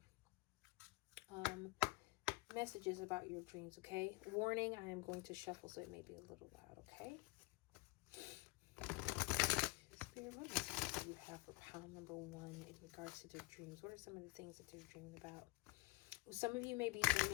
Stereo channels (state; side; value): quieter; right; 22.5 dB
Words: messages about your dreams, okay? Warning, I am going to shuffle, so it may be a little loud, okay? Spirit, what messages do you have for pile number 1 in regards to their dreams? What are some of the things that they're dreaming about? Some of you may be